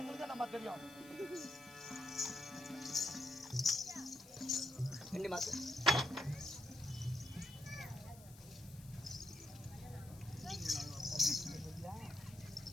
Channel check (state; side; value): noise; left; hiss, 20 dB below the sound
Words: நம்ம தெரியும். ரெண்டு மாசம்